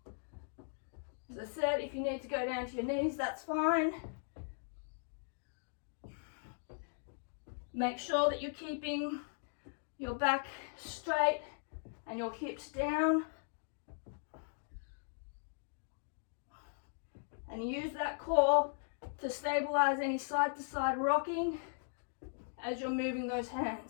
As I said, if you need to go down to your knees, that's fine. Make sure that you're keeping your back straight and your hips down. And use that core to stabilize any side to side rocking as you're moving those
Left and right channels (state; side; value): silent; right; digital silence